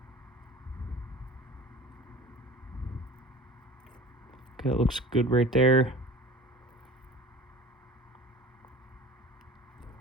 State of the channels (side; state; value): both; normal; correlation 0.40